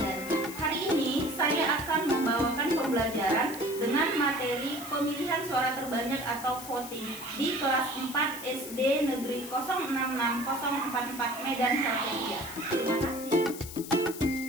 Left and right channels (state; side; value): noise; left; hiss, 12 dB below the sound